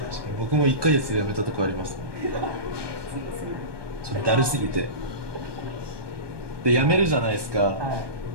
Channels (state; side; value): late; left; 1.2 ms